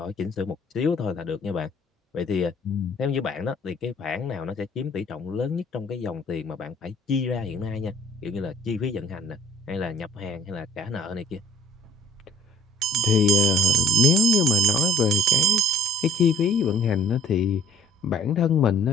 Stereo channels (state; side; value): normal; both; correlation 0.57